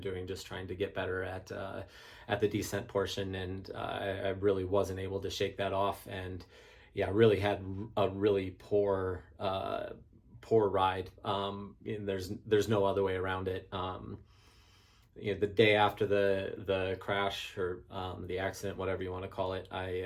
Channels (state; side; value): identical; both; correlation 1.00